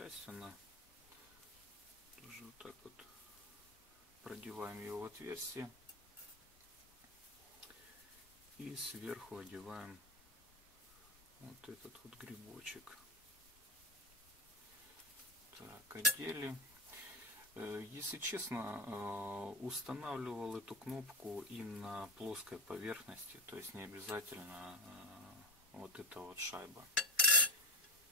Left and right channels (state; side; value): noise; left; rumble, 27 dB below the sound